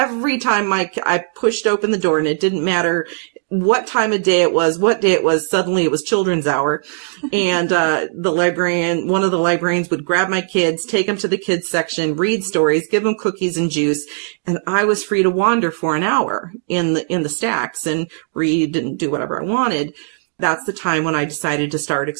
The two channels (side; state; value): left; silent; digital silence